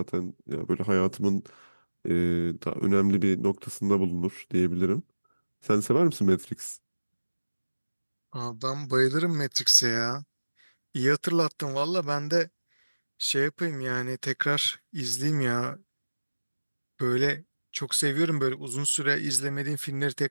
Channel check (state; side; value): inverted; both; correlation -1.00